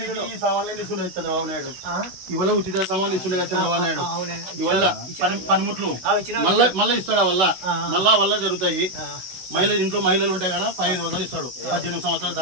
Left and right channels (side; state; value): left; late; 16 ms